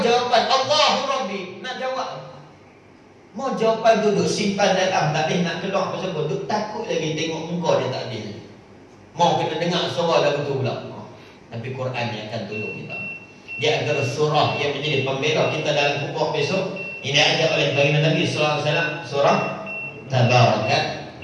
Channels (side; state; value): both; identical; correlation 1.00